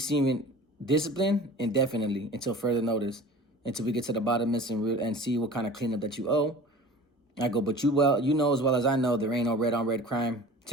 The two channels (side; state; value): both; normal; correlation 0.41